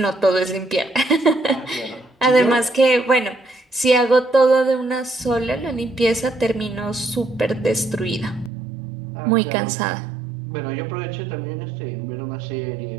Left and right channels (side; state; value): left; drops out; at 8.5 s